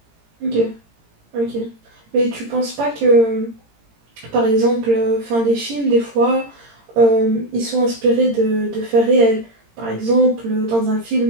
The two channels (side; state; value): left; late; 18 ms